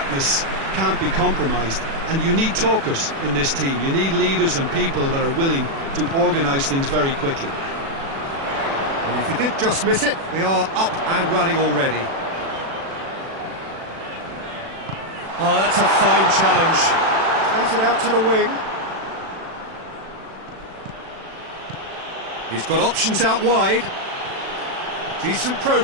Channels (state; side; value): late; left; 36 ms